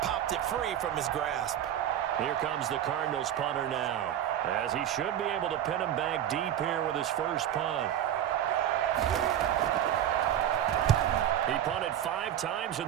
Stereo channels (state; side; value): quieter; left; 10.8 dB